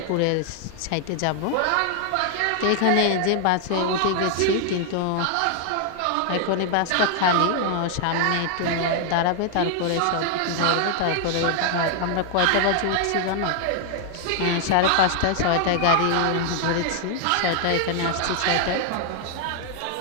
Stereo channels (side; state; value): both; different; correlation 0.00